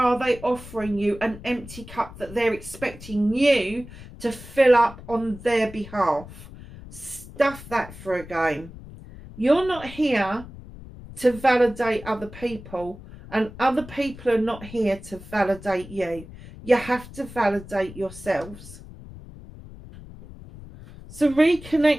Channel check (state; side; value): noise; left; rumble, 16 dB below the sound